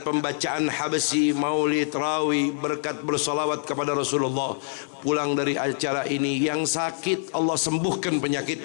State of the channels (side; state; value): right; silent; 57 dB below the other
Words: pembacaan habsi, maulid, rawi, berkat bersalawat kepada Rasulullah. Pulang dari acara ini yang sakit Allah sembuhkan